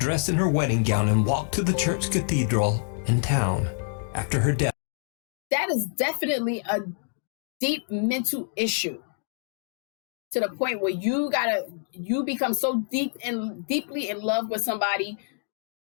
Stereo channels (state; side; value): silent; right; digital silence